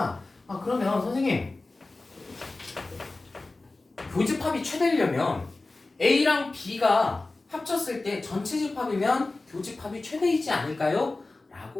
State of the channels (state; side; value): quieter; right; 3.3 dB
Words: 그러면 선생님 교집합이 최대이려면 A랑 B가 합쳤을 때 전체 집합이면 교집합이 최대이지 않을까요?